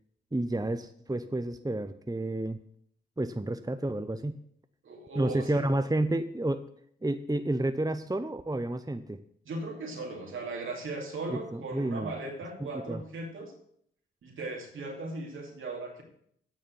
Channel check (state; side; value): normal; both; correlation 0.82